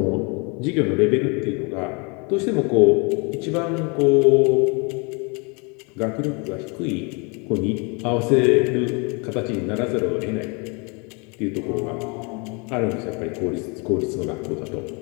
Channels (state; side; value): quieter; right; 31.8 dB